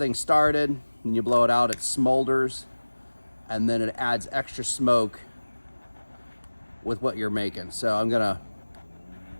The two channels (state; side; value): inverted; both; correlation -1.00